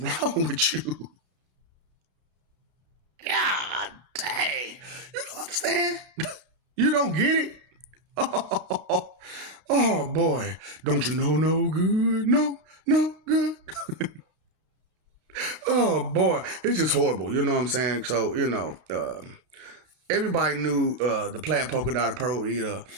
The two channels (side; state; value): left; late; 33 ms